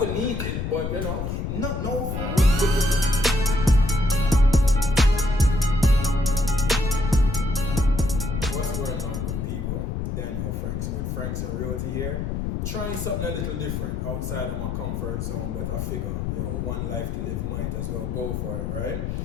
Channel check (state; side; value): noise; left; rumble, 3 dB below the sound